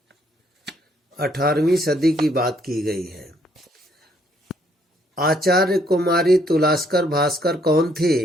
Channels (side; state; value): both; normal; correlation 0.68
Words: 18वीं सदी की बात की गई है। आचार्य कुमारी तुलास्कर भास्कर कौन